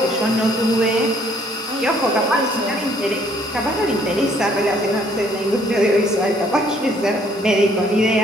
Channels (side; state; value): both; normal; correlation 0.63